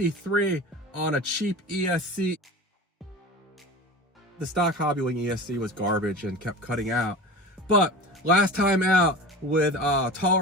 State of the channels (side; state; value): both; normal; correlation 0.33